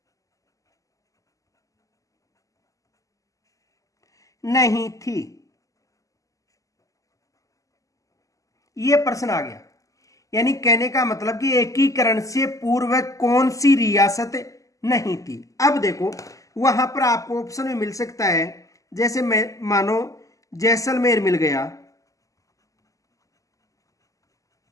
नहीं थी? यह प्रश्न आ गया। यानी कहने का मतलब कि एकीकरण से पूर्व कौन सी रियासत नहीं थी। अब देखो वहां पर आपको ऑप्शन में मिल सकता है, जैसे मैं मानो जैसलमेर मिल गया,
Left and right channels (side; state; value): right; late; 0.16 ms